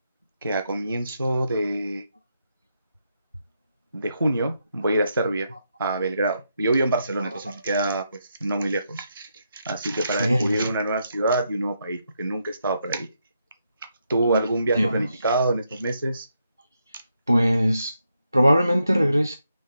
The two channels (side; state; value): both; inverted; correlation -0.80